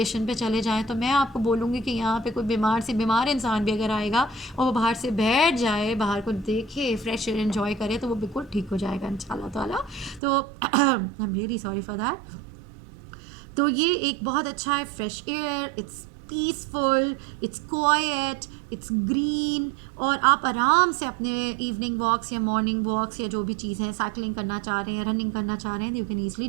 पे चले जाएं, तो मैं आपको बोलूँगी कि यहाँ पे कोई बीमार से बीमार इंसान भी अगर आएगा और वो बाहर से बैठ जाए, बाहर को देखे, फ्रेश एयर एंजॉय करे, तो वो बिल्कुल ठीक हो जाएगा इंशाल्लाह ताला। तो I am really sorry for that. तो ये एक बहुत अच्छा है, fresh air, it's peaceful, it's quite, it's green, और आप आराम से अपने इवनिंग वॉक्स या मॉर्निंग वॉक्स या जो भी चीज़ है, साइकिलिंग करना चाह रहे हैं, रनिंग करना चाह रहे हैं, you can easily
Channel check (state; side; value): drops out; left; at 10.2 s